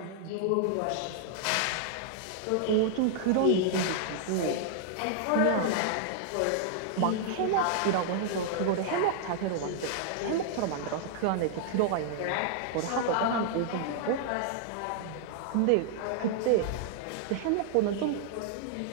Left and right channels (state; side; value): different; both; correlation -0.01